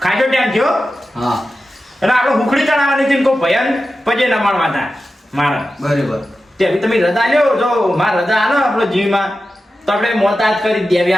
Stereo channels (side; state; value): both; normal; correlation 0.93